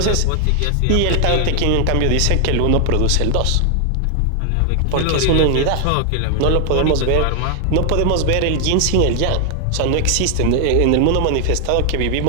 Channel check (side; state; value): both; different; correlation 0.00